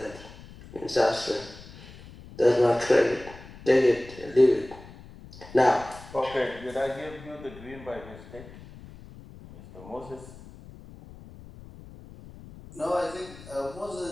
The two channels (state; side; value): noise; left; rumble, 18 dB below the sound